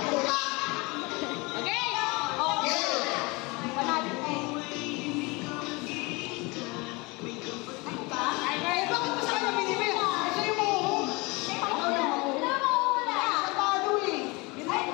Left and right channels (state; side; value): quieter; right; 25.8 dB